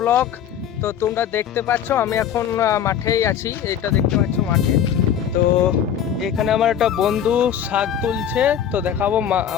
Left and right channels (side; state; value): right; quieter; 9.1 dB